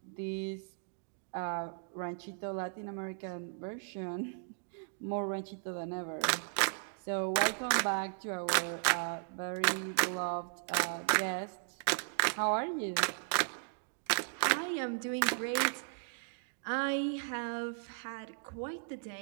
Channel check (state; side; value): silent; left; digital silence